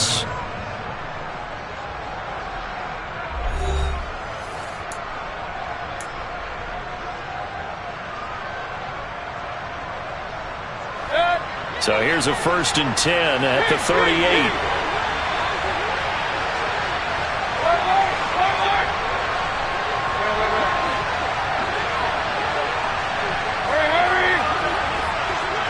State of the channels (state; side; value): identical; both; correlation 1.00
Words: So here's a 1st and 10 at the 38.